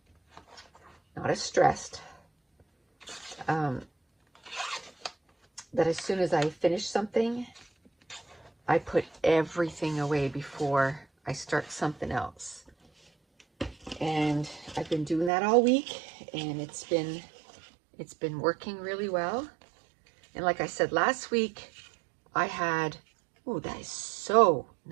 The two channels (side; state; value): left; drops out; at 15.3 s